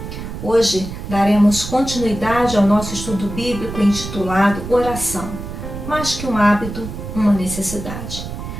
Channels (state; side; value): noise; right; rumble, 8 dB below the sound